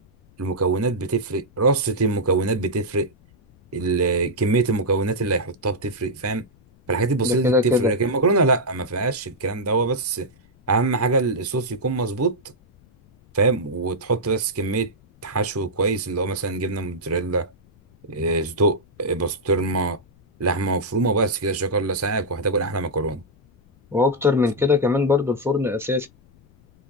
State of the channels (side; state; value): left; noise; rumble, 29 dB below the sound